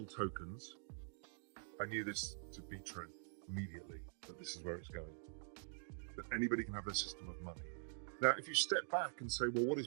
tokens, I knew this to be true immediately, that this is where it's going. That anybody can have their system of money. Now, if you step back and say, well, what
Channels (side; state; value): left; silent; digital silence